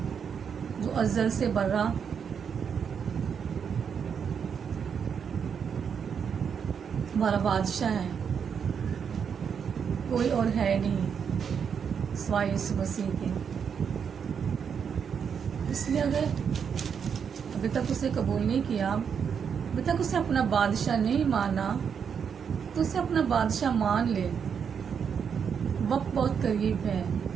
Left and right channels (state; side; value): quieter; left; 7.0 dB